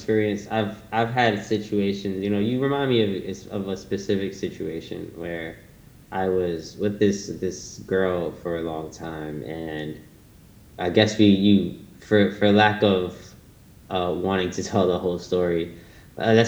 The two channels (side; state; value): both; identical; correlation 1.00